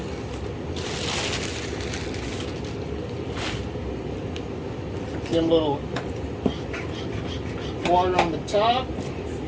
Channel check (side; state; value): both; identical; correlation 1.00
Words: Give them a little water on the top.